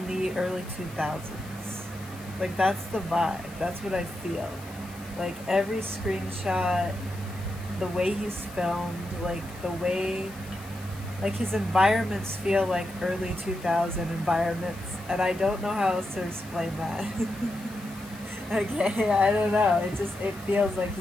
the early 2000s. Like, that's the vibe. That's what I feel. Like, every screenshot, the way he's filmed, like, the way, like, his environments feel like early 2000 environments. And I don't know how else to explain that. Okay, I don't know. It feels like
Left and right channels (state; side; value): noise; left; hiss, 20 dB below the sound